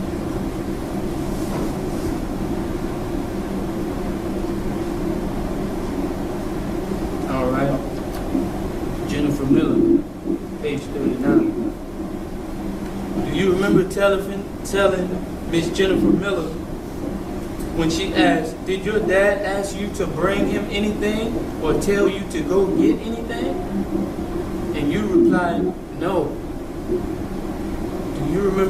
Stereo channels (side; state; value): both; identical; correlation 1.00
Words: All right. Jennifer Miller, page 39. Do you remember telling Miss Jennifer Miller when she asked, did your dad ask you to bring him anything or tell you to go get anything? And you replied, no. Do you